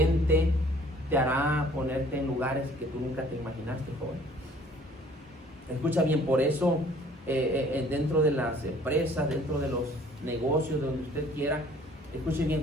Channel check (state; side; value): normal; both; correlation 0.55